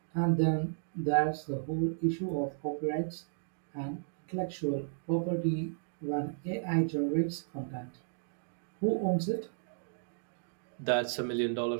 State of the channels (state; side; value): silent; left; digital silence